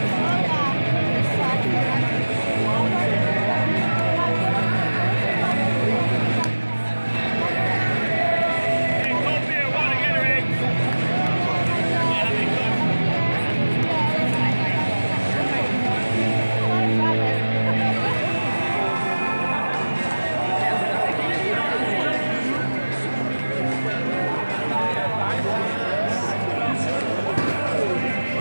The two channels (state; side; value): inverted; both; correlation -1.00